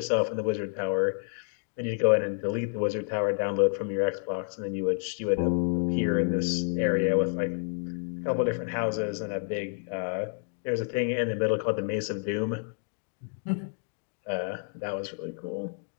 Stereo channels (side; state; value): right; silent; 58 dB below the other